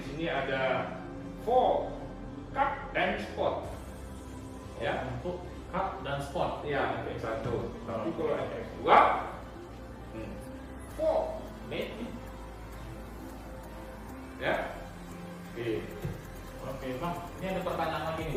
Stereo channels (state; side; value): identical; both; correlation 1.00